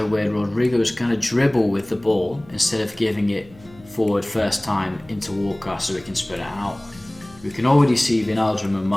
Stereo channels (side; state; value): left; noise; hum, 24 dB below the sound